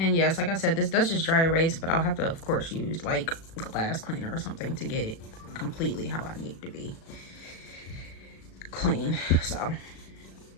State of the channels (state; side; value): late; right; 37 ms